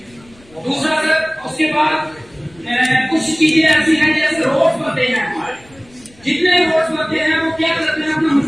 दूसरा सर, उसके बाद कुछ चीजें ऐसी हैं जैसे रोड बनते हैं, हमारे जितने रोड बनते हैं वो क्या करते हैं, अपना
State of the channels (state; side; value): noise; left; rumble, 28 dB below the sound